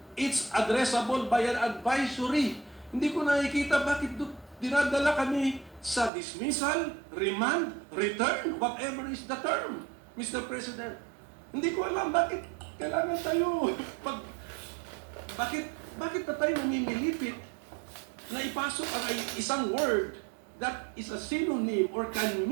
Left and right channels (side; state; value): left; drops out; at 6.1 s